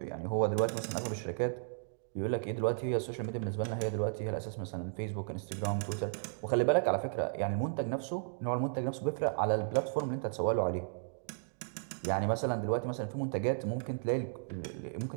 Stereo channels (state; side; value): silent; left; digital silence